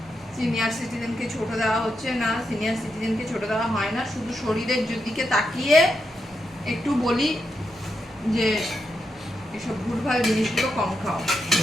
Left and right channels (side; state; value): both; normal; correlation 0.84